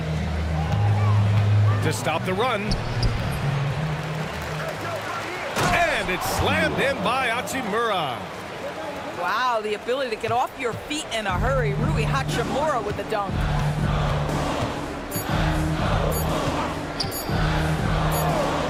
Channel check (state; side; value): identical; both; correlation 1.00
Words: To stop the run. And it's slammed in by Hachimura. Wow, the ability to get off your feet in a hurry. Rui Hachimura with the dunk.